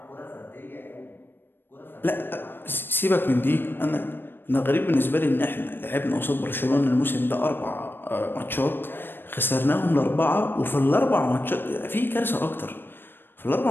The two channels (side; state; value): right; late; 0.098 ms